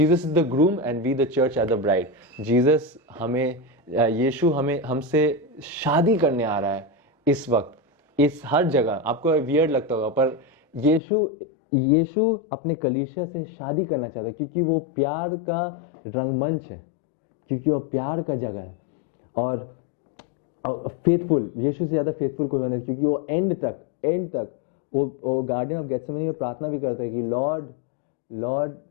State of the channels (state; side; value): drops out; right; at 11.0 s